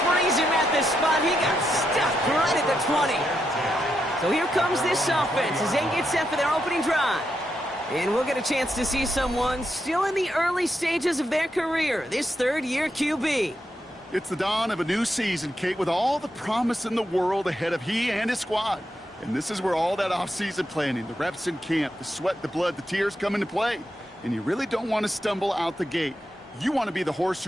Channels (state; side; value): normal; both; correlation 0.83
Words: freeze him at the spot. He got stuck right at the 20. So here comes this offense as they get set for their opening drive. And we'll get a chance to see someone still in the early stages of their career, this 3rd-year QB. It's the dawn of a new season, Kate, with all the promise in the world ahead of he and his squad. And this is where all that off-season planning, the reps in camp, the sweat, the blood, the tears come into play. And you really don't want to stumble out the gate. You want to be the horse